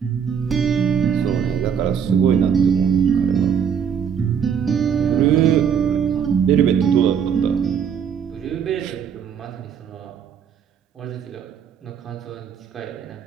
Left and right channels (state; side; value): quieter; left; 7.6 dB